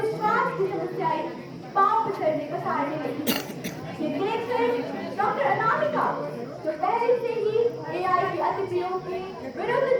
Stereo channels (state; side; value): identical; both; correlation 1.00